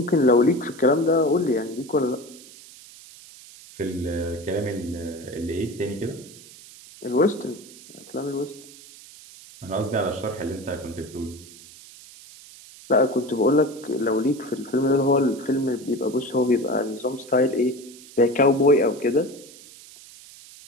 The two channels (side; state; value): right; noise; hiss, 20 dB below the sound